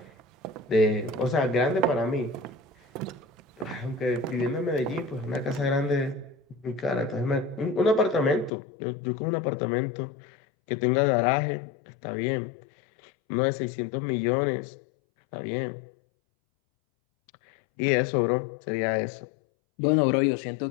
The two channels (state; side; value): drops out; right; at 8.5 s